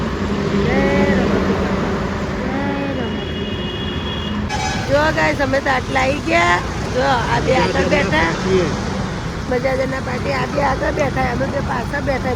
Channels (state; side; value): identical; both; correlation 1.00